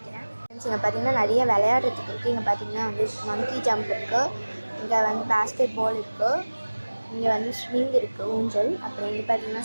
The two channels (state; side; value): inverted; both; correlation -1.00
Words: ஃப்ரெண்ட்ஸ், இங்கே பார்த்தீங்கன்னா நிறைய விளையாடுறதுக்கு இருக்குது. இங்கே பார்த்தீங்கன்னா வந்து மங்கி ஜம்ப் இருக்குது, இங்கே வந்து பேஸ்கெட் பால் இருக்குது, இங்கே வந்து ஸ்விங் இருக்குது, ஊஞ்சல். அப்புறம் இங்கே பார்த்தீங்கன்னா